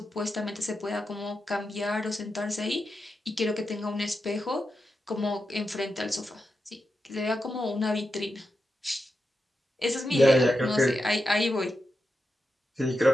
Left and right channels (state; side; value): normal; both; correlation 0.88